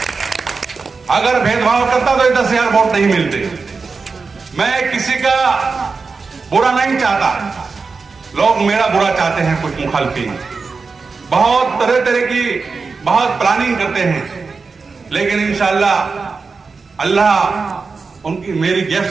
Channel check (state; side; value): quieter; left; 4.6 dB